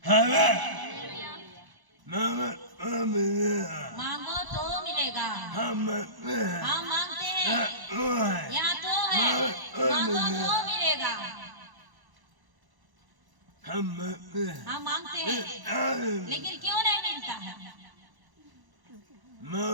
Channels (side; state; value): left; late; 1.0 ms